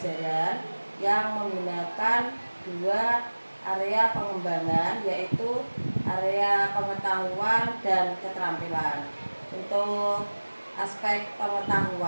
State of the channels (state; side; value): inverted; both; correlation -1.00